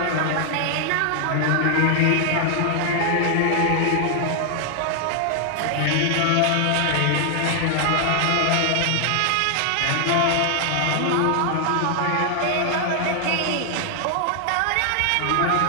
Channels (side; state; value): both; different; correlation 0.00